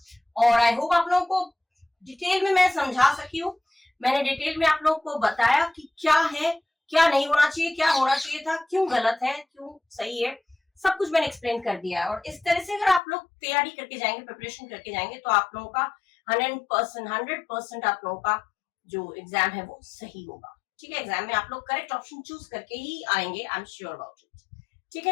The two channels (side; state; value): right; drops out; at 13.0 s